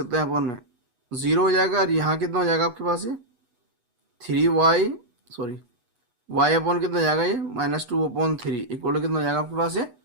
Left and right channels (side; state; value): left; late; 8.2 ms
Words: हैं, अपॉन में 0 हो जाएगा, और यहाँ कितना हो जाएगा आपके पास ये 3y, सॉरी y अपॉन कितना हो जाएगा ये -2/3 इक्वल कितना हो जाएगा आपके पास ये